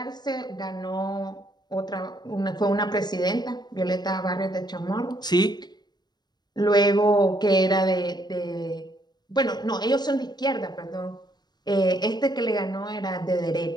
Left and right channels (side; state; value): right; late; 0.20 ms